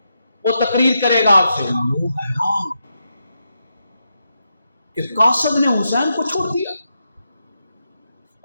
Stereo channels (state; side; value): inverted; both; correlation -0.84